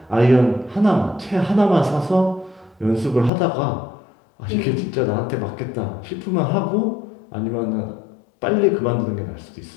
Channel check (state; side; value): drops out; right; at 3.3 s